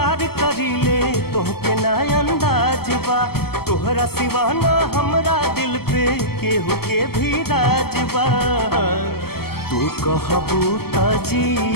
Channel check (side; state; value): right; late; 0.95 ms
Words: करीले तोहके ना अंदाज बा। तोहरा सिवाना हमरा दिल पे केहू के भी राज बा। तू कहबू त